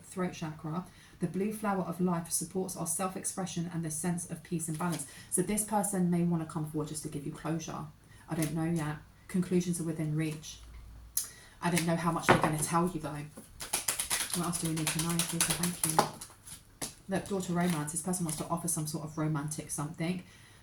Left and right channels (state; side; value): identical; both; correlation 1.00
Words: chakra, the blue flower of life, supports our self-expression and the sense of peace and balance. So this person may want to come forward just to give you closure. I don't know yet. Conclusions are within reach. I don't know how much they're going to tell you though. What else do we need to know? Please, thank you. Look, door to romance. This person wants to offer some sort of romantic something.